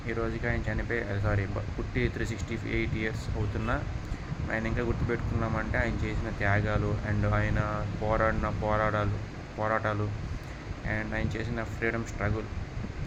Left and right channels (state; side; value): identical; both; correlation 1.00